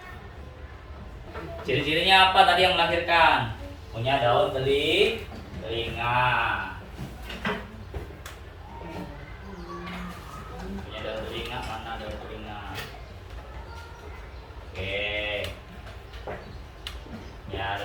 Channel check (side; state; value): both; identical; correlation 1.00